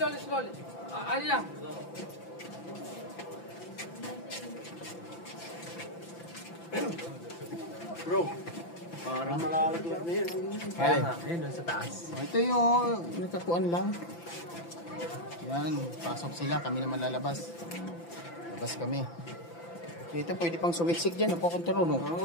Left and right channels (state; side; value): late; right; 5.9 ms